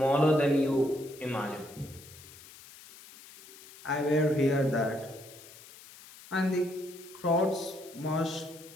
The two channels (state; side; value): noise; left; hiss, 19 dB below the sound